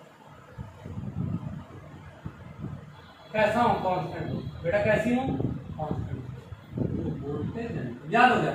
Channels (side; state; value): both; identical; correlation 1.00